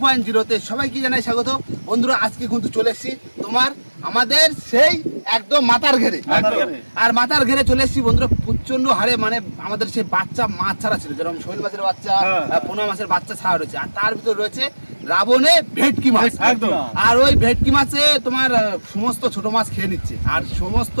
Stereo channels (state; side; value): inverted; both; correlation -1.00